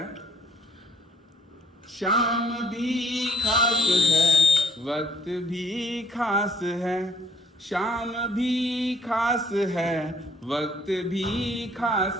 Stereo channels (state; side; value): normal; both; correlation 0.61